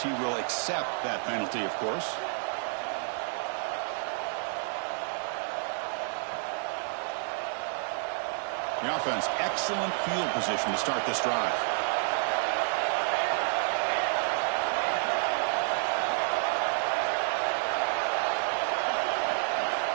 He will accept that penalty, of course. The offense, excellent field position to start this drive.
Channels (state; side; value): silent; left; 55 dB below the other